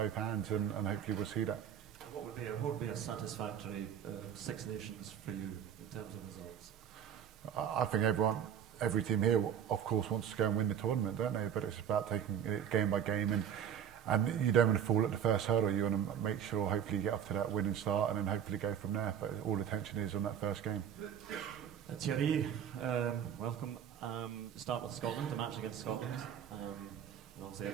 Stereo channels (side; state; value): left; quieter; 9.0 dB